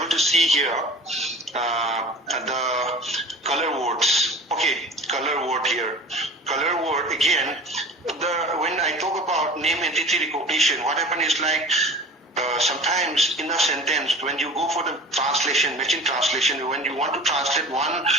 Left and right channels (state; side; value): normal; both; correlation 0.40